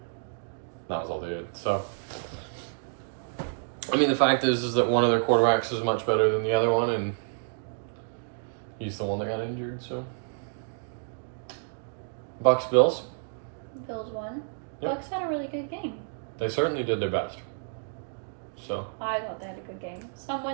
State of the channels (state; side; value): silent; left; digital silence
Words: That was all they did. So, I mean, the fact is that one of their quarterbacks is much better than the other one, and he's the one that got injured, so. Bucks, Bills. Bills won. Yep. Bucks had a really good game. They certainly did their best. So. I thought they had a good game.